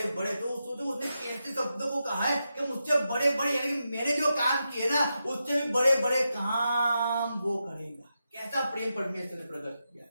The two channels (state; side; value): inverted; both; correlation -0.87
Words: बड़े, तो उसने कैसे शब्दों को कहा है कि मुझसे बड़े बड़े, यानी कि मैंने जो काम किए ना उससे भी बड़े बड़े काम वो करेगा। कैसा प्रेम परमेश्वर ने प्रकट किया,